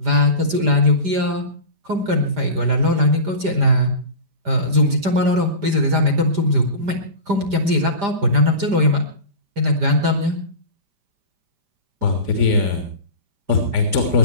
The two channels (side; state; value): left; late; 5.0 ms